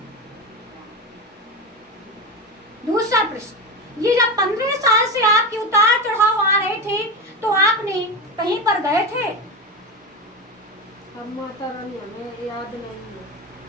दूसरा प्रश्न, ये जब 15 साल से आपके उतार चढ़ाव आ रहे थे तो आपने कहीं पर गए थे? अब माता रानी हमें याद नहीं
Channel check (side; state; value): both; normal; correlation 0.20